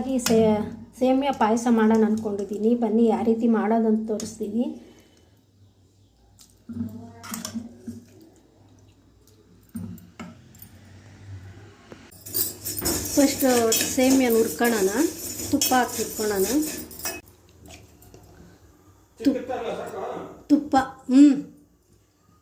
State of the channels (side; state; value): both; identical; correlation 1.00